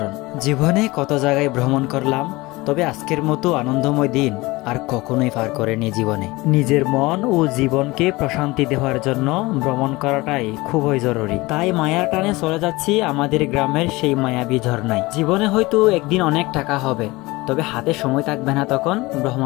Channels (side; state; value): right; quieter; 21.5 dB